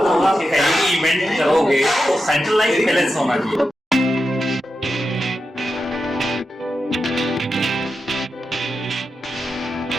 इवेंट करोगे तो सेंट्रलाइज बैलेंस होना चाहिए।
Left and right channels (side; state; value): both; normal; correlation 0.89